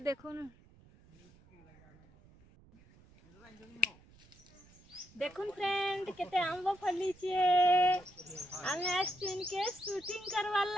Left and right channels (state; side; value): noise; right; rumble, 26 dB below the sound